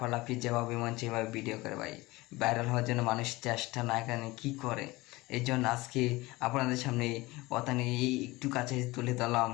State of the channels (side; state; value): right; quieter; 21.0 dB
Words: যেভাবে মন সেভাবে ভিডিও করে ভাই, ভাইরাল হওয়ার জন্য মানুষ চেষ্টা না কেন কী করে। এই জন্য আজকে আপনাদের সামনে কথা নিয়ে একটু কাছে তুলে ধরলাম।